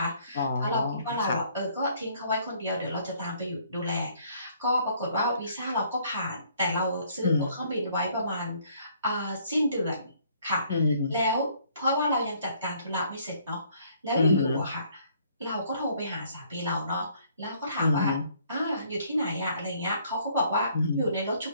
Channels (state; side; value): inverted; both; correlation -0.63